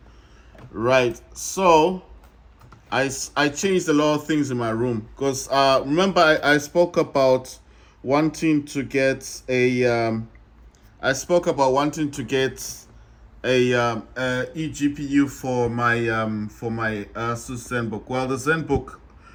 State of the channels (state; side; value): identical; both; correlation 1.00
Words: Right. So I changed a lot of things in my room because remember I spoke about wanting to get I spoke about wanting to get a eGPU for my Asus ZenBook. Well, the ZenBook